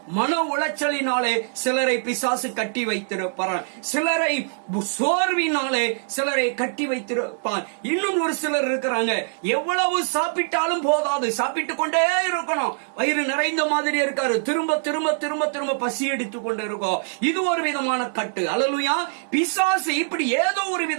மன உளைச்சலினாலே சிலரை பிசாசு கட்டி வைத்திருப்பார். சிலரை சோர்வினாலே சிலரை கட்டி வைத்திருப்பார். இன்னும் ஒரு சிலர் இருக்கிறாங்க, எவ்வளவு சாப்பிட்டாலும் போதாது, சாப்பிட்டுக் கொண்டே இருக்கணும், வயிறு நிறைந்த மாதிரி இருக்காரு, திரும்ப திரும்ப திரும்ப திரும்ப பசி எடுத்துக் கொண்டு இருக்கும். இது ஒரு விதமான கட்டு. அல்லேலூயா. பிசாசு இப்படி ஏதோ ஒரு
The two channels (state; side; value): silent; left; digital silence